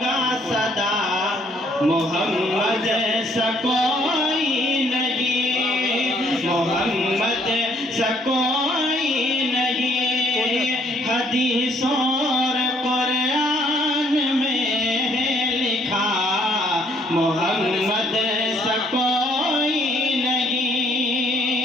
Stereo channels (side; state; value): both; normal; correlation 0.65